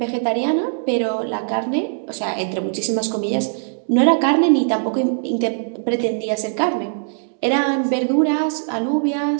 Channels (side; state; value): left; silent; digital silence